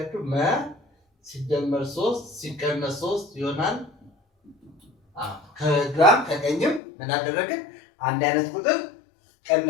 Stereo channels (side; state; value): right; drops out; at 6.8 s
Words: መ ሲደመር 3 ሲቀነስ 3 ይሆናል። ከግራም ከቀኝም ምን አደረግን? አንድ አይነት ቁጥር